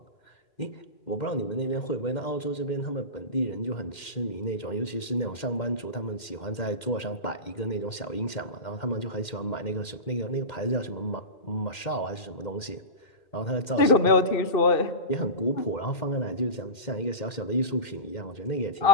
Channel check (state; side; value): late; right; 2.1 ms